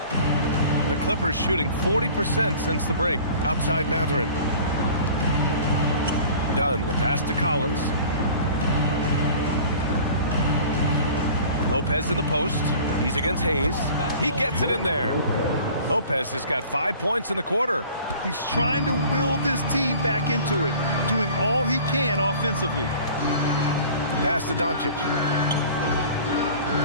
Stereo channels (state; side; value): inverted; both; correlation -0.45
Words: The Clippers shooting 40% since the break. Outside Matherin. Dunn, the pass to Collins. Lopez in the post. He's against Hayes. He gets it in there. Lopez has got 5 points in the quarter. He's trying to will this team back into it, doing all he can offensively. Pass to Doncic.